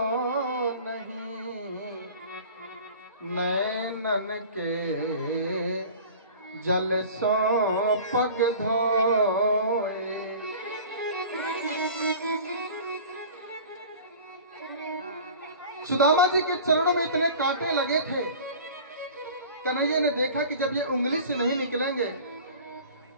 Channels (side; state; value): both; inverted; correlation -0.41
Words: नहीं, नैनन के जल सो पग धोए। सुदामा जी के चरणों में इतने कांटे लगे थे। कन्हैया ने देखा कि जब ये उंगली से नहीं निकलेंगे